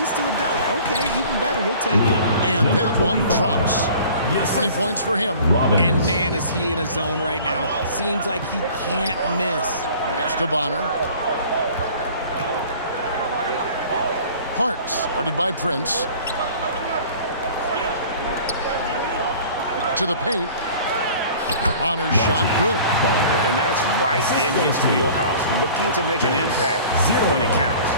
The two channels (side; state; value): both; inverted; correlation -0.46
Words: to a dunk, okay, even better. You'll take it. And that one drops. 20 points for him. And man, is he in a zone right now. Seems like he can't miss. Pass to Bonner. Parks, guarded by Prince. To the paint. Bonner's shot good. And that's right in his wheelhouse, looking to make an impact when it counts.